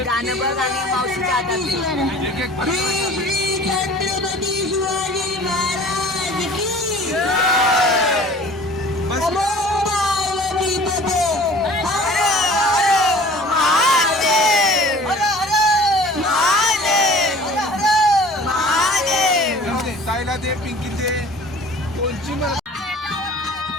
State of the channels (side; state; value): both; normal; correlation 0.46